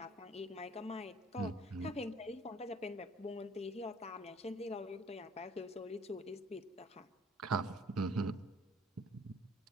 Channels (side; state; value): both; normal; correlation 0.55